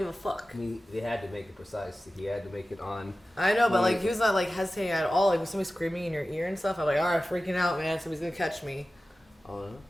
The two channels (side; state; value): both; normal; correlation 0.96